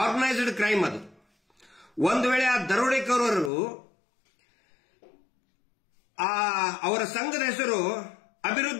ಕ್ರೈಮ್ ಅದು. ಒಂದು ವೇಳೆ ಆ ದರೋಡೆಕೋರರು ಅವರ ಸಂಘದ ಹೆಸರು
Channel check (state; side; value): drops out; right; at 3.5 s